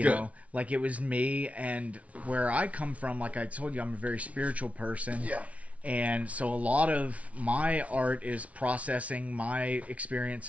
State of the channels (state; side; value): late; left; 0.066 ms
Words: good. know, like it was me, and where I come from, like I told you, I'm a very spiritual person. Yeah. And so a lot of my art is processing my